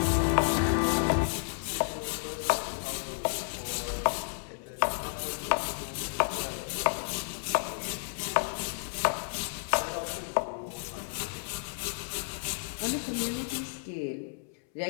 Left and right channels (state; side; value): silent; right; 57 dB below the other